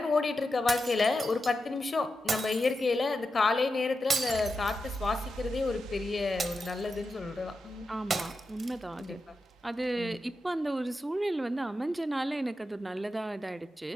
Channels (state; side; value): normal; both; correlation 0.89